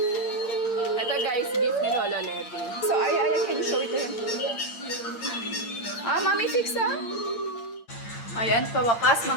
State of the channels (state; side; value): late; right; 8.7 ms